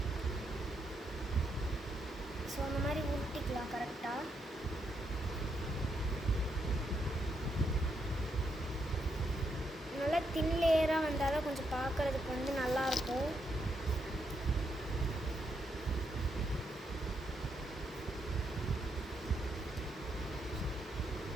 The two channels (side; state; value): both; normal; correlation 0.79